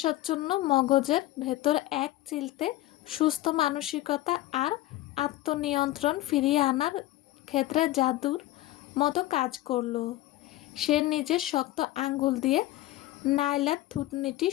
মগজের ভেতর এক চিলতে সুস্থ মানসিকতা আর আত্মনিয়ন্ত্রণ ফিরিয়ে আনার ক্ষেত্রে জাদুর মতো কাজ করল। সে নিজের শক্ত আঙ্গুল দিয়ে নাইলার থুতনিটি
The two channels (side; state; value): right; quieter; 16.2 dB